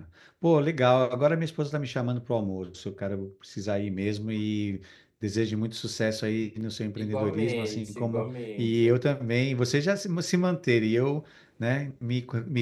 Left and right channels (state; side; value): identical; both; correlation 1.00